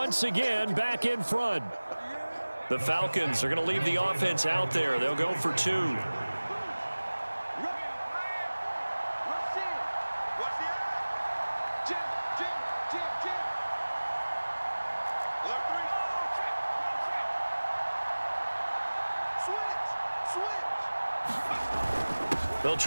again back in front. The Falcons are going to leave the offense out there. They'll go for 2. They'll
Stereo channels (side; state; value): both; inverted; correlation -1.00